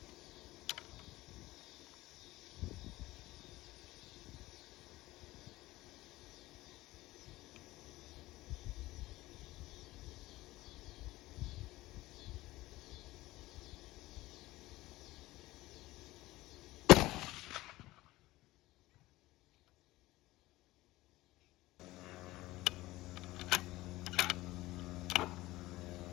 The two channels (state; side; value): quieter; right; 18.1 dB